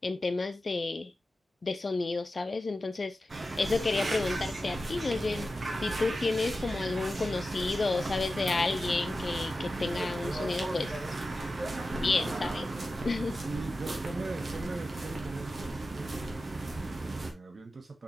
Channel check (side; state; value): both; normal; correlation 0.93